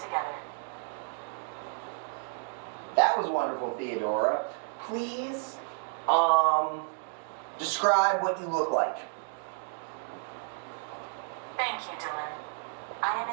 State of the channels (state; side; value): silent; left; 57 dB below the other